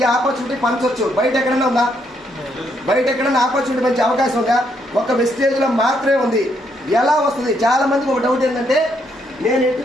ఆపర్చునిటీ పంచవచ్చు. బయట ఎక్కడైనా ఉందా? బయట ఎక్కడైనా ఆపర్చునిటీ మంచి అవకాశం ఉందా? ఒక వెస్టేజ్ లో మాత్రమే ఉంది. ఎలా వస్తుంది? చాలా మందికి ఒక డౌట్ ఏంటంటే, నేను ఎట్టి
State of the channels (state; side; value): normal; both; correlation 0.74